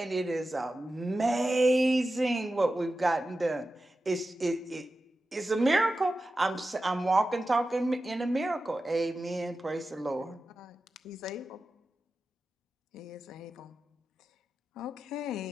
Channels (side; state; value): both; normal; correlation 0.93